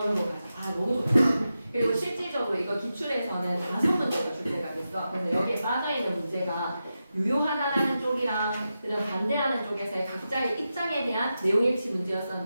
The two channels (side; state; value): both; inverted; correlation -0.90